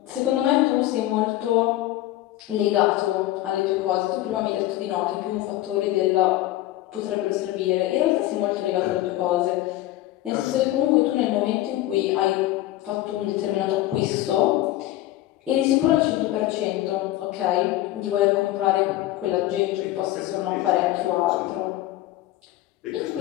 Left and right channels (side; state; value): right; quieter; 15.6 dB